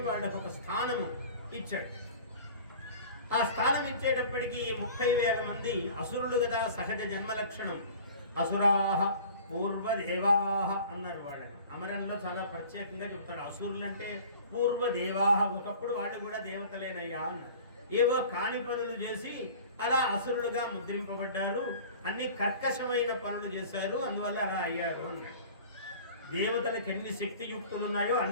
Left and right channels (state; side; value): inverted; both; correlation -0.44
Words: వాళ్ళకు ఒక స్థానము ఇచ్చాడు. ఆ స్థానం ఇచ్చేటప్పటికి 30,000 మంది అసురులు కదా, సహజ జన్మ లక్షణం. అసురాహ పూర్వదేవాహ అన్నారు వాళ్ళని. అమరంలో చాలా ప్రత్యేకంగా చెప్తాడు. అసురులు అంటే పూర్వదేవాహ, ఒకప్పుడు వాళ్ళు కూడా దేవతలేనయ్యా అన్నారు. ఏవో కాని పనులు చేసి అలా అసురులుగా ముద్రింపబడ్డారు, అన్ని కర్కశమైన పనులు చేశారు, అందువల్ల అలా అయ్యారు అన్నాడు. దేవతలకు ఎన్ని శక్తియుక్తులు ఉన్నాయో